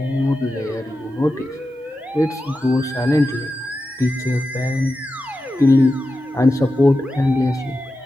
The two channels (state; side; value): normal; both; correlation 0.91